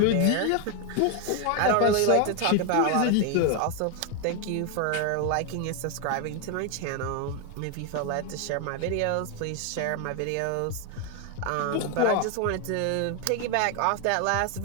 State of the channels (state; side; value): different; both; correlation 0.01